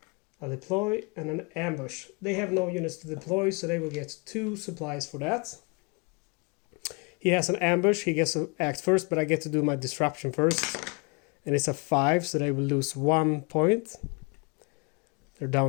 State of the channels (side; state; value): right; quieter; 32.5 dB